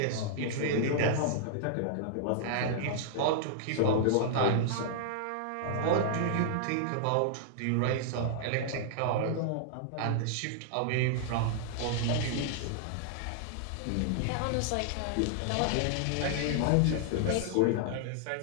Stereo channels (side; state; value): both; different; correlation -0.01